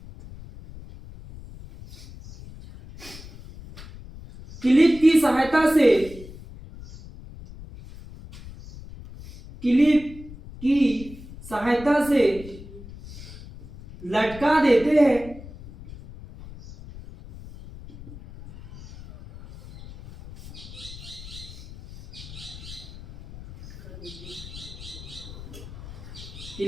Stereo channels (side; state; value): left; noise; rumble, 15 dB below the sound